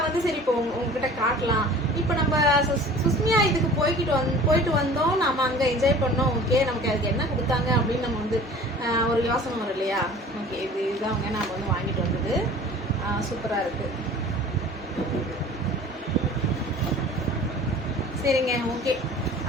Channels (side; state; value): both; normal; correlation 0.44